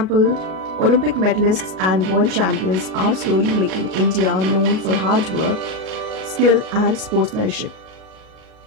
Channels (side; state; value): left; late; 38 ms